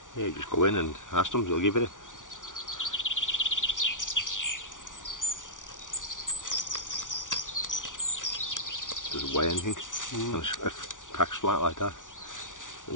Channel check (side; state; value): right; late; 0.87 ms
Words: Yeah, you just go in and ask them, they'll give it. Doesn't weigh anything. And it packs flat like that.